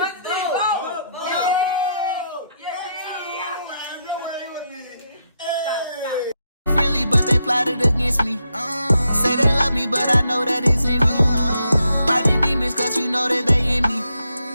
Friendly, but they plotted against me. Say they love me, but I know that it's in me. Fighting demons, cause you know that they in me.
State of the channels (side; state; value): both; inverted; correlation -0.80